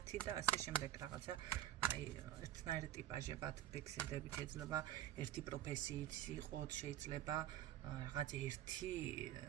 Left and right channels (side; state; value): left; quieter; 11.9 dB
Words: და ასე შემდეგ რაღაცა აი ერთნაირი ტიპაჟებად ფიქსირდებით, შეიძლება ერთი პროფესიით იყოთ, შეიძლება